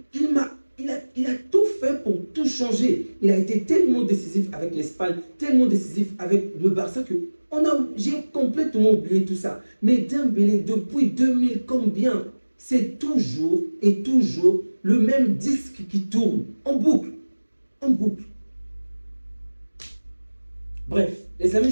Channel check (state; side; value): inverted; both; correlation -1.00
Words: Il a tout fait pour tout changer. Il a été tellement décisif avec l'Espagne, tellement décisif avec le Barça que j'ai complètement oublié tout ça. Mais Dembélé, depuis 2000 combien? C'est toujours et toujours le même disque qui tourne en boucle. En boucle. Bref, les amis,